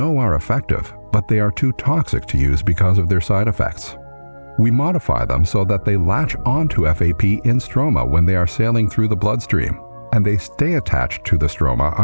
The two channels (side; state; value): both; inverted; correlation -1.00